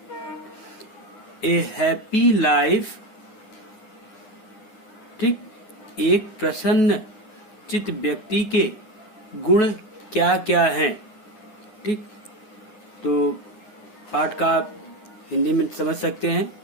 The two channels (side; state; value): right; late; 9.8 ms